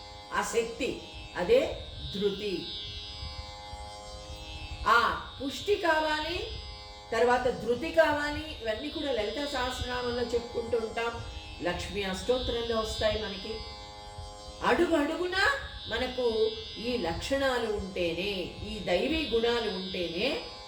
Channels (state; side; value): identical; both; correlation 1.00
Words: ఆ శక్తి, అదే ధృతి. ఆ పుష్టి కావాలి, తర్వాత ధృతి కావాలి. ఇవన్నీ కూడా లలితా సహస్రనామంలో చెప్పుకుంటూ ఉంటాం, లక్ష్మీ అష్టోత్తరంలో వస్తాయి మనకి. అడుగు అడుగున మనకు ఈ లక్షణాలు ఉంటేనే, ఈ దైవీ గుణాలు ఉంటేనే